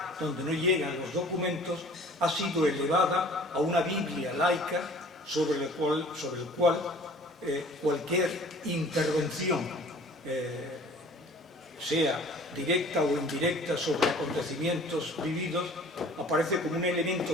donde no llegan los documentos, ha sido elevada a una Biblia laica sobre el cual cualquier intervención, sea directa o indirecta, sobre acontecimientos vividos, aparece como un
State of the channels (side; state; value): both; normal; correlation 0.49